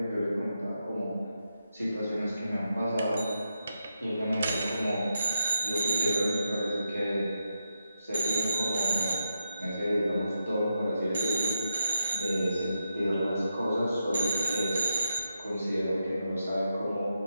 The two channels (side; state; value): both; inverted; correlation -0.86